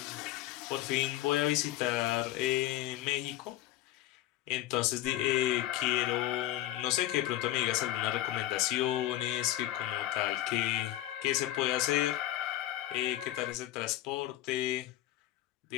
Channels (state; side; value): quieter; right; 14.6 dB